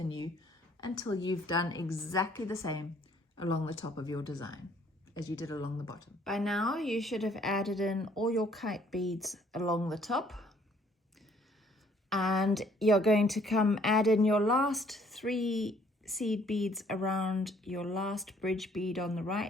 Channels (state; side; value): normal; both; correlation 0.62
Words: until you've done exactly the same along the top of your design as you did along the bottom. By now you should have added in all your kite beads along the top. And you're going to come add in your last 3 seed beads around your last bridge bead on the